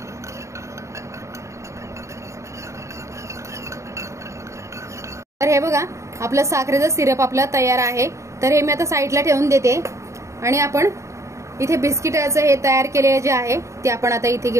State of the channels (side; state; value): left; late; 0.14 ms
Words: तर हे बघा, आपलं साखरेचं सिरप आपलं तयार आहे। तर हे मी आता साईडला ठेवून देते आणि आपण इथे बिस्किटाचं हे तयार केलेले जे आहे ते आपण आता इथे